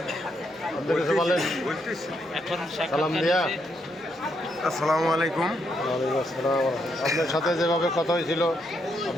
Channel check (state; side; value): normal; both; correlation 0.78